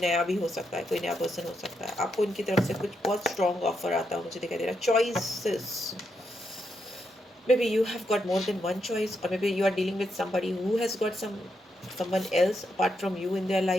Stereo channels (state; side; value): normal; both; correlation 0.82